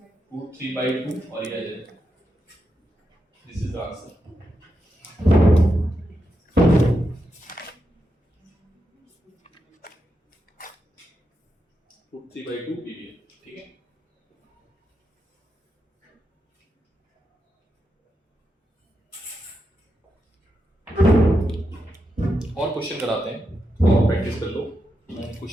√3/2 और ये आ जाएगा। This is the answer. √3/2 PV। ठीक है, और क्वेश्चन कराते हैं और प्रैक्टिस कर लो। मैं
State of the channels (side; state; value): both; normal; correlation 0.86